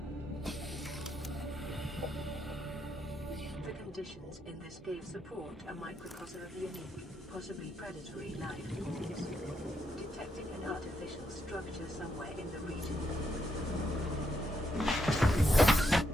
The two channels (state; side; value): normal; both; correlation 0.79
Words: The conditions in this cave support a microcosm of unique, possibly predatory life forms. Detecting an artificial structure somewhere in the region.